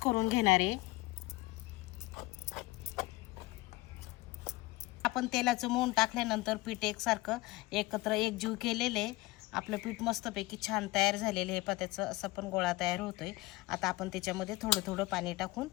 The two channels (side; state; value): right; quieter; 20.3 dB